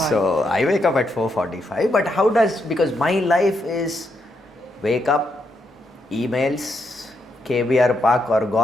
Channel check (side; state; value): both; normal; correlation 0.80